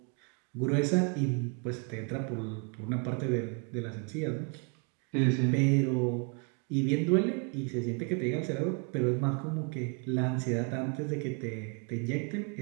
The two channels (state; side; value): quieter; left; 36.5 dB